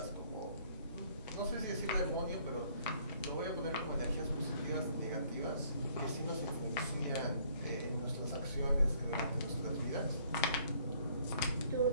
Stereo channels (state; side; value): inverted; both; correlation -0.62